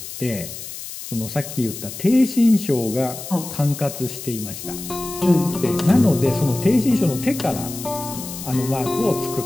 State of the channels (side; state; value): left; noise; hiss, 10 dB below the sound